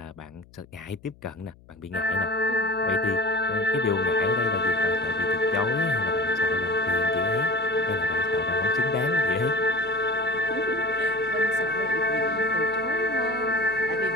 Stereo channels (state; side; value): noise; left; hum, 25 dB below the sound